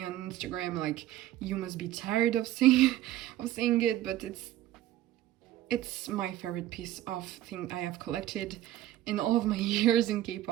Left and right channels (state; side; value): quieter; left; 13.9 dB